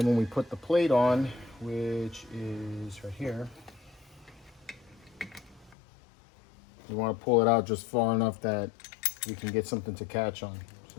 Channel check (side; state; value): right; drops out; at 5.8 s